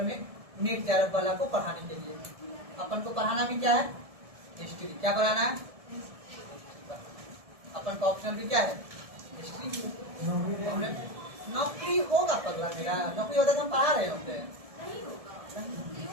में नेट JRF वाला को पढ़ाने के लिए। अपन को पढ़ाना भी क्या है, हिस्ट्री। क्या पढ़ाना है, अपन का ऑप्शन भी क्या है, हिस्ट्री। नौकरी होगा पगला मेरा, नौकरी होता तो हम पढ़ा रहे होते हैं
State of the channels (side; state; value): left; late; 1.7 ms